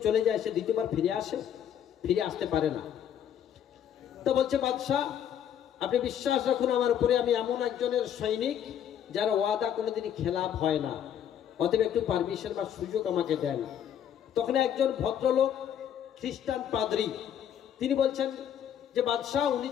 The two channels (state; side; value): quieter; right; 9.5 dB